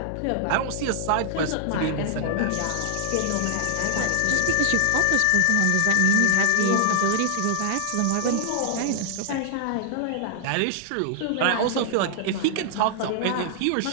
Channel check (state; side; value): different; both; correlation 0.00